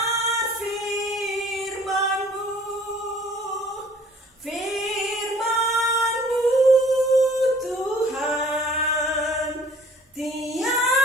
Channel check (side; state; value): both; normal; correlation 0.54